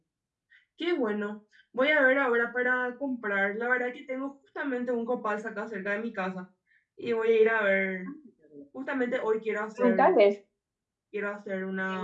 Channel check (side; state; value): both; identical; correlation 1.00